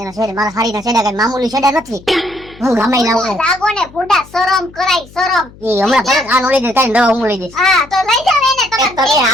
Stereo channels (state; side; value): noise; left; hum, 22 dB below the sound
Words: એના છેડે મારા હારીના છેડા કઈ મામૂલી છેડા નથી. હું ગમે ના હું લાગો ને બુડા શરમ કરાય શરમ ઈ હમણાં ફરક આ નો લઈ દે તારી દવા હું લઈ દઈશ. હા તો લઈ જાવ એને તમે